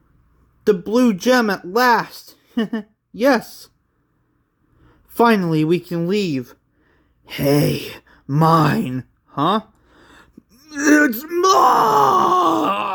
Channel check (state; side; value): identical; both; correlation 1.00